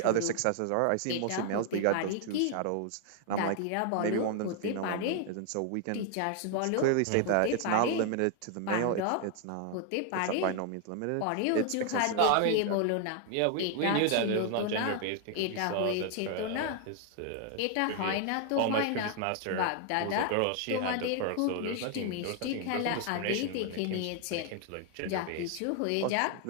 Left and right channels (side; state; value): both; different; correlation 0.00